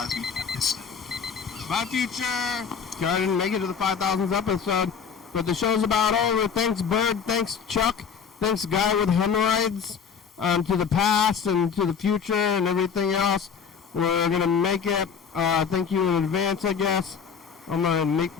episode. Bye, future. Okay, I didn't make it to the 5,000th episode, but the show's about over. Thanks, Bird. Thanks, Chuck. Thanks, Guy with Hemorrhoids. To the past and to the future and everything else. We're gonna make it. Thank you in advance, I guess. I'm gonna make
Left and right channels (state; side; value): quieter; right; 6.7 dB